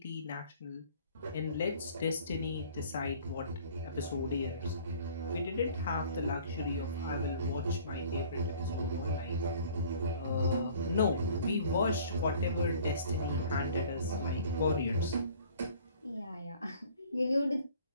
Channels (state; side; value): inverted; both; correlation -0.51